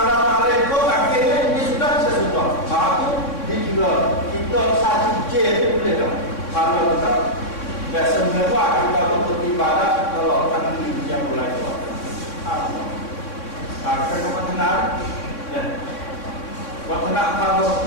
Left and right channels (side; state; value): right; late; 3.6 ms